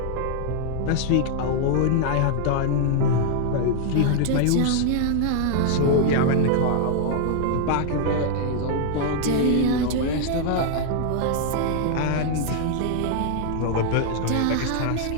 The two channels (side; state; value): both; different; correlation 0.00